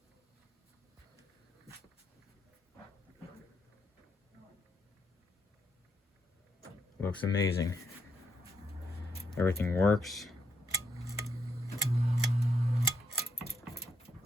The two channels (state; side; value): normal; both; correlation 0.77